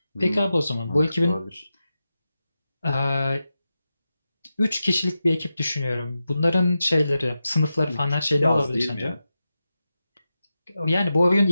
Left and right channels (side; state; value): both; inverted; correlation -0.91